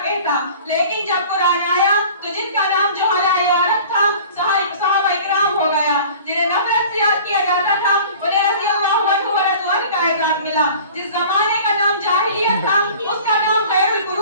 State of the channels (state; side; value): inverted; both; correlation -0.44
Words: کہتا، لیکن جب قرآن آیا تو جن کا نام جہلاء عرب تھا صحابہ اکرام ہو گیا، جنہیں نفرت سے یاد کیا جاتا تھا، انہیں رضی اللہ عنہ و رضوان کا اعزاز ملا۔ جس زمانے کا نام جاہلیت تھا اس کا نام خیر